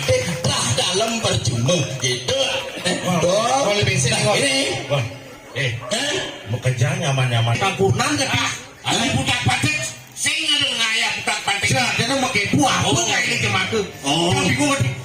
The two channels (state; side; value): identical; both; correlation 1.00